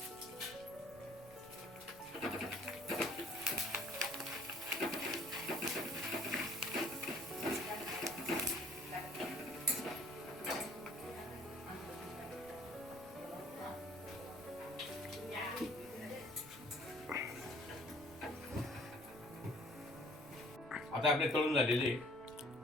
आता आपले तळून झालेले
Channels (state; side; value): noise; right; rumble, 20 dB below the sound